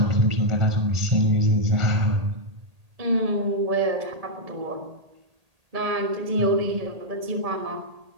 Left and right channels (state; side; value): late; left; 1.8 ms